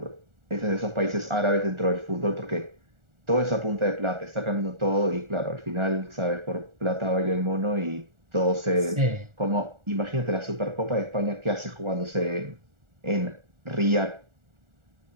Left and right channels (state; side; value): late; left; 1.4 ms